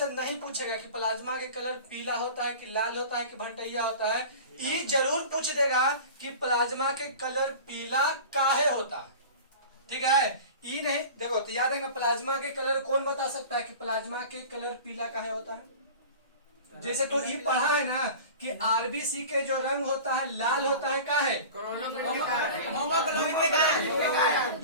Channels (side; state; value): both; inverted; correlation -0.37